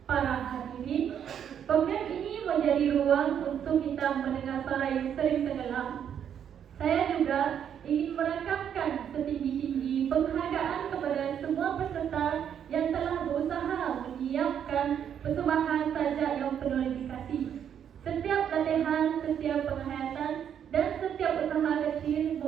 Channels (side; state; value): left; quieter; 8.8 dB